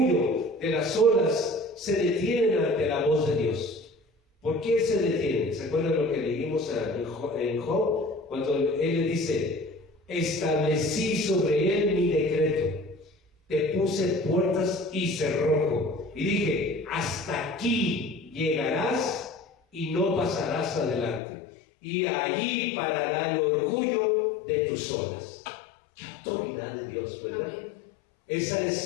de las olas se detienen ante la voz de Dios. ¿Por qué se detienen? ¿Se acuerdan lo que leímos en Job? Cuando él le dice, establecí sobre él mi decreto. Te puse puertas y cerrojo. Y dije, hasta aquí llegarás y no pasarás adelante. Y allí parará el orgullo de tus olas. ¡Qué autoridad de Dios!, ¿verdad? Amén. Esa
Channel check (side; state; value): right; drops out; at 21.2 s